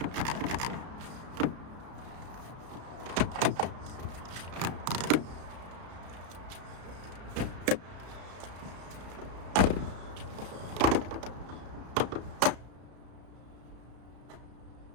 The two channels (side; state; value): left; late; 33 ms